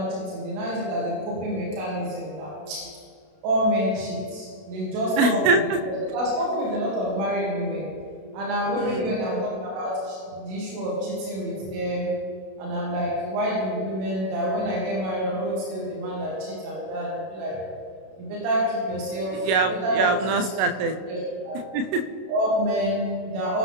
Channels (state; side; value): late; left; 32 ms